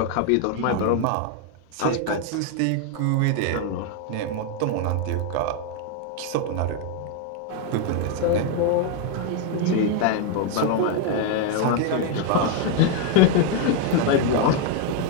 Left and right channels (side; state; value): both; different; correlation 0.01